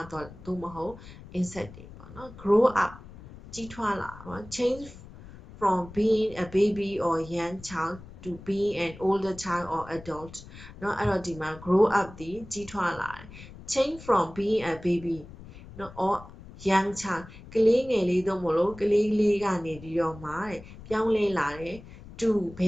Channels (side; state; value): left; noise; rumble, 17 dB below the sound